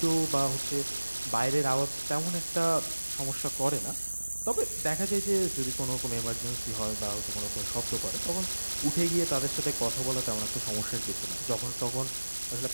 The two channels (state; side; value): inverted; both; correlation -1.00